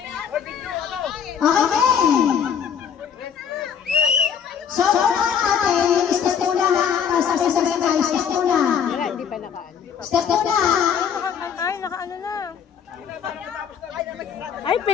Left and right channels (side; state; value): right; quieter; 7.7 dB